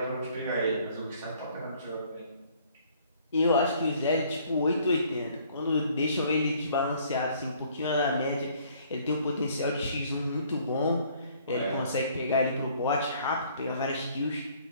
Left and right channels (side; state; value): both; inverted; correlation -0.60